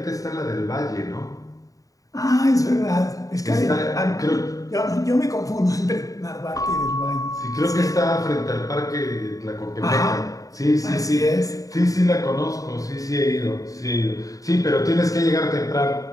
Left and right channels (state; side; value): late; right; 0.17 ms